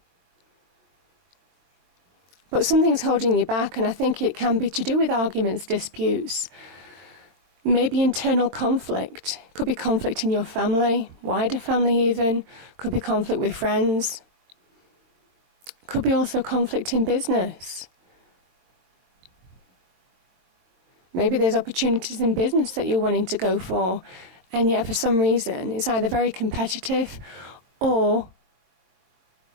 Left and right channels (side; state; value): left; late; 22 ms